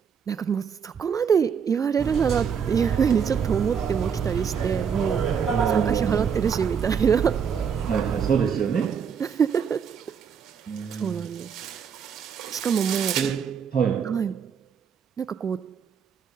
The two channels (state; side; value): quieter; left; 6.9 dB